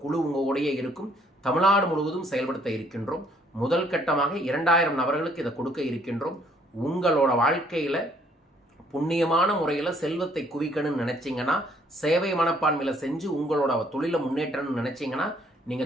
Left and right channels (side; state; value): both; normal; correlation 0.64